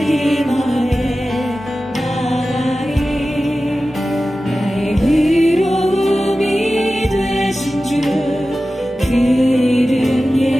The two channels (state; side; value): normal; both; correlation 0.95